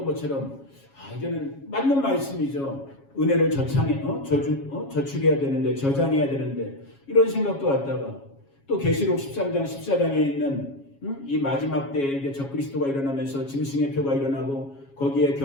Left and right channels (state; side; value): late; right; 7.3 ms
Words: 것처럼 이제는 맞는 말씀이죠. 은혜를 저축해야 되는데, 저장해야 되는데, 이런 생각도 왔다가 또 계시록 13장 14장에 있는 이 마지막 때에 이제 적그리스도가 일어나면서 짐승의 표가 일어나고 거기에